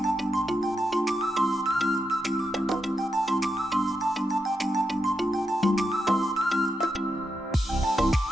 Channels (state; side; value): normal; both; correlation 0.85